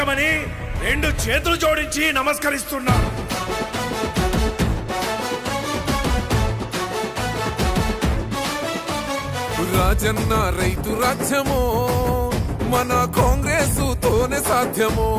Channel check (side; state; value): both; identical; correlation 1.00